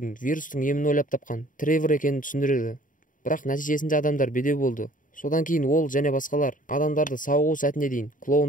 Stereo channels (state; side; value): late; right; 0.39 ms